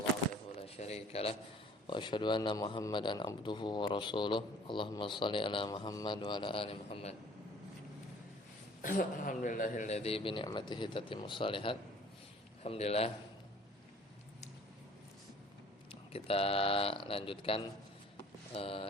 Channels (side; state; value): both; normal; correlation 0.52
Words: wahdahu la syarika lah wa asyhadu anna Muhammadan abduhu wa rasuluh. Allahumma shalli ala Muhammad wa ala ali Muhammad. Alhamdulillahilladzi bi ni'matihi tatimmus shalihat. Alhamdulillah. Kita lanjutkan